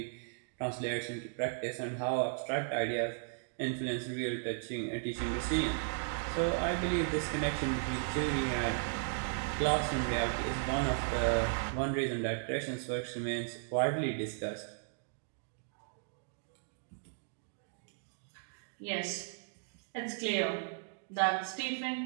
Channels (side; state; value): left; silent; digital silence